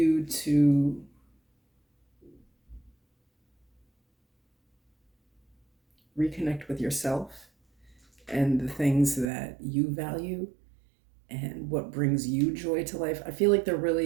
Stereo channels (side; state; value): left; drops out; at 9.2 s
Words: to reconnect with yourself and the things that you value and what brings you joy to life. I feel like there